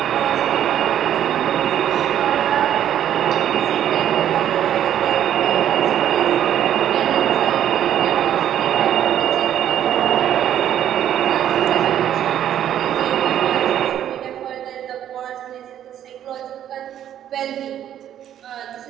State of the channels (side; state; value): left; quieter; 10.6 dB